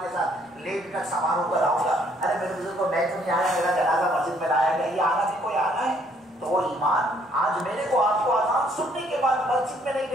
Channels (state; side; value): normal; both; correlation 0.65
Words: के साथ लेट कर सवार होकर आऊंगा। अरे मेरे बुजुर्ग को मैं तो नहीं आया, मेरा जनाजा मस्जिद में लाया गया, ये आना भी कोई आना है? तो वो ईमान आज मेरे को आपको आजान सुनने के बाद मस्जिद में नहीं